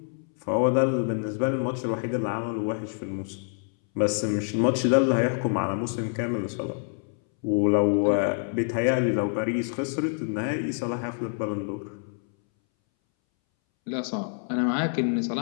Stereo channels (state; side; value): silent; right; 60 dB below the other